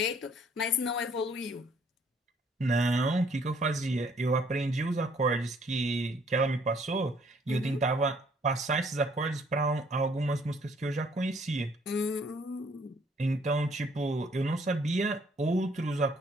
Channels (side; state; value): both; normal; correlation 0.63